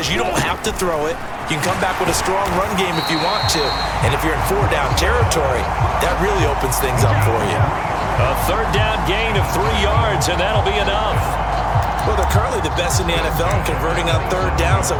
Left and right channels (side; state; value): both; identical; correlation 1.00